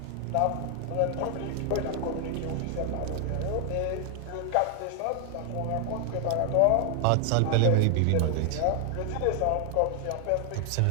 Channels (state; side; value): different; both; correlation 0.00